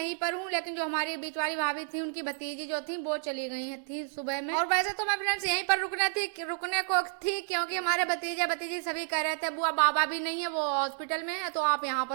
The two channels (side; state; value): left; silent; digital silence